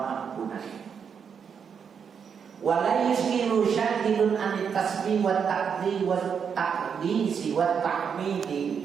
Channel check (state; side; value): quieter; left; 6.9 dB